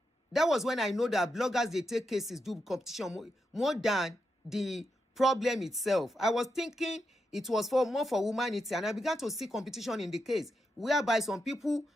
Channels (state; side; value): normal; both; correlation 0.85